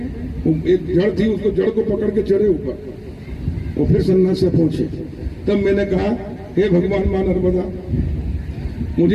जड़ थी, उसको जड़ को पकड़ के चढ़े ऊपर और फिर सन्नासिया पहुंचे। तब मैंने कहा, हे भगवान मां नर्मदा, मुझे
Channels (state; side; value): identical; both; correlation 1.00